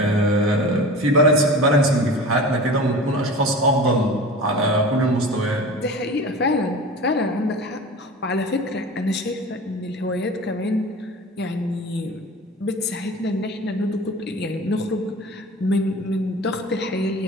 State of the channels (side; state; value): both; normal; correlation 0.36